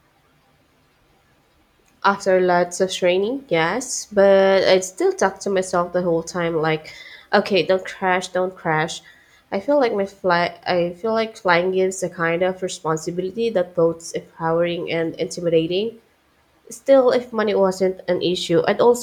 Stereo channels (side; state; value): both; identical; correlation 1.00